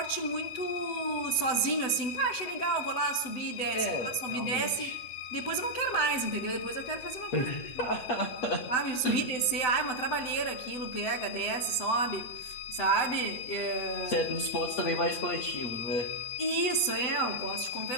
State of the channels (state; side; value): late; right; 8.0 ms